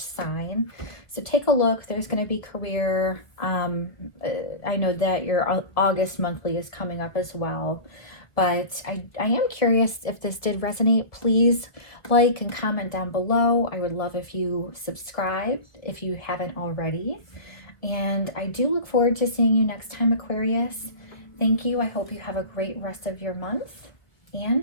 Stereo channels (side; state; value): right; late; 1.2 ms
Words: sign. So take a look. There's going to be career. I know that your August monthly is coming up as well. But I am curious if this did resonate. Please like and comment down below. I would love if you subscribe if you haven't already. And I do look forward to seeing you next time, Aquarius. Thank you. I hope you have a great rest of your month.